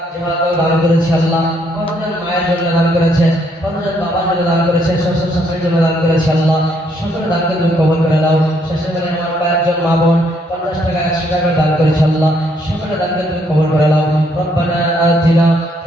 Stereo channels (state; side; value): normal; both; correlation 0.71